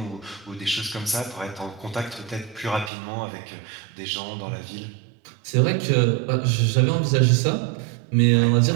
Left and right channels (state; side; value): drops out; left; at 2.9 s